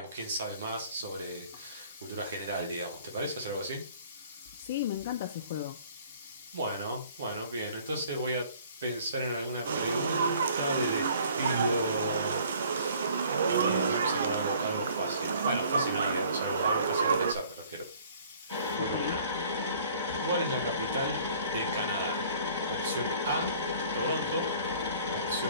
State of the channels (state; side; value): inverted; both; correlation -0.54